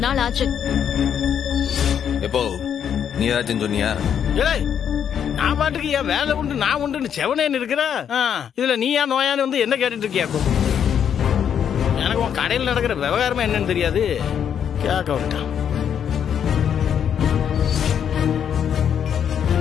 நாள் ஆச்சு. எப்போ நீ ஏதாச்சும் சொன்னியா? நான் பாட்டுக்கு என் வேலை உண்டு நான் உண்டு செவனேன்னு இருக்கிறேன். இதுல நீ ஏன் நோயான்னு வந்து என்ன கேட்டுட்டு இருக்கியாக்கும்? எனக்கு உன் கடையில் நடக்கிற விவகாரமா என்னன்னு தெரியாது. கேட்க விட்டான்.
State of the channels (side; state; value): right; quieter; 8.5 dB